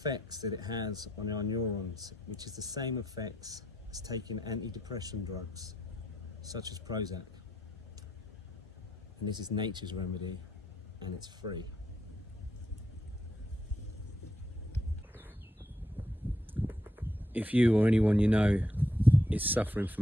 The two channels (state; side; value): normal; both; correlation 0.79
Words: that it has on our neurons, which is the same effects as taking antidepressant drugs, such as Prozac. And this is nature's remedy, and it's free. If you or anyone you know is suffering